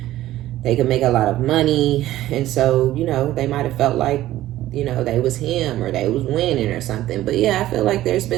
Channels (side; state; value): left; quieter; 14.5 dB